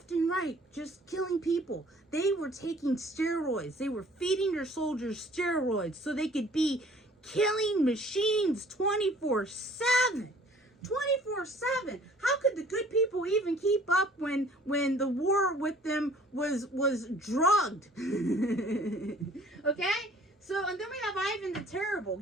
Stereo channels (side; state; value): both; normal; correlation 0.54